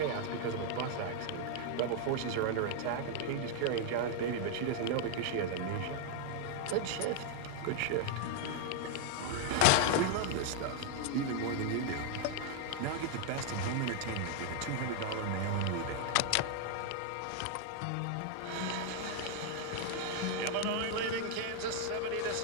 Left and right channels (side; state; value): both; different; correlation 0.00